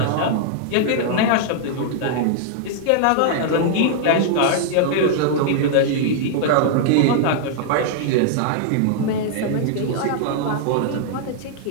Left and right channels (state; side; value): different; both; correlation -0.01